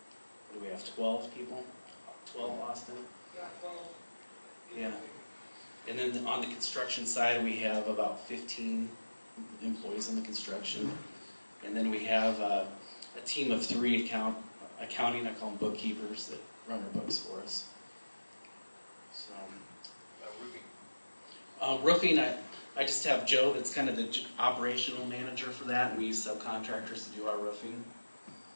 do we have, 12 people? 12, Austin? Yeah. And then on the construction side, we have about 15 employees in the construction. And then we have a team of 3 accounting, I call them bookkeepers, that run our books for us. So, roofing, I just have Joe that's kind of the operational manager for that, and we use subcontractors to do our roofing.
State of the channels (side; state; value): both; inverted; correlation -1.00